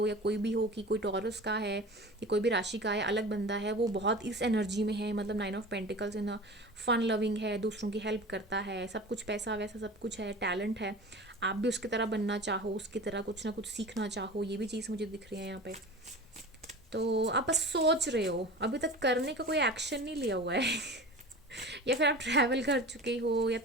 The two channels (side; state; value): both; normal; correlation 0.36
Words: या कोई भी हो कि कोई टॉरस का है या कोई भी राशि का है, अलग बंदा है, वो बहुत इस एनर्जी में है, मतलब 9 of pentacles in fun loving है, दूसरों की हेल्प करता है, सब कुछ पैसा वैसा सब कुछ है, टैलेंट है, आप भी उसकी तरह बनना चाहो, उसकी तरह कुछ ना कुछ सीखना चाहो, ये भी चीज़ मुझे दिख रही है यहाँ पे। तो आप बस सोच रहे हो, अभी तक करने का कोई एक्शन नहीं लिया हुआ है या फिर आप ट्रैवल कर चुके हो या